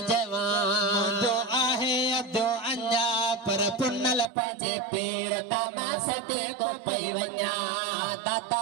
जवान मुंहिंजो आहे अजो अञा पर पुनल पंहिंजे पीर तमा सते को पई वञा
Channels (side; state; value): left; drops out; at 4.3 s